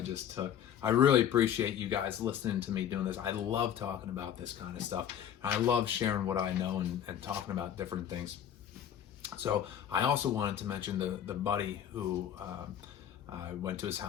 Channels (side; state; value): right; quieter; 9.7 dB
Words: just took. I really appreciate you guys listening to me doing this. I love talking about this kind of stuff. I love sharing what I know and talking about different things. So I also wanted to mention the buddy who I went to his